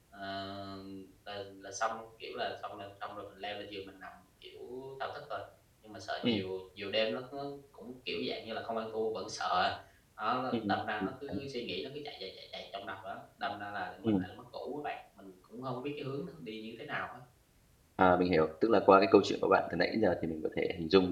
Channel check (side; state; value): both; identical; correlation 1.00